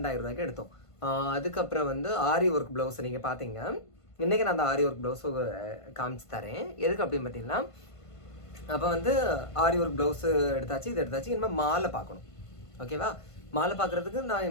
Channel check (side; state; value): right; late; 1.5 ms